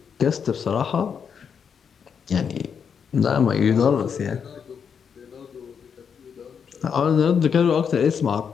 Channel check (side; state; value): right; quieter; 7.0 dB